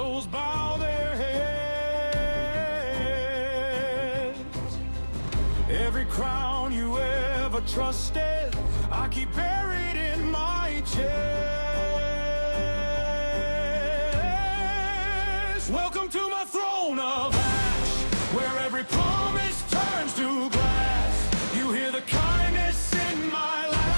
bow their heads. Every crown you ever trusted, I keep buried in my chest. Welcome to my throne of ash, where every promise turns to glass. You hear the kindness in my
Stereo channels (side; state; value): both; inverted; correlation -1.00